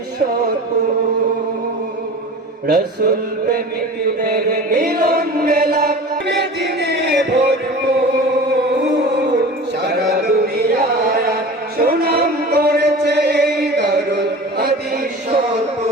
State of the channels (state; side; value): normal; both; correlation 0.37